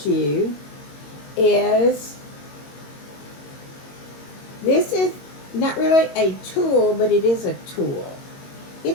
is this is not really a tool, but it is a tool.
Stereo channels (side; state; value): right; late; 22 ms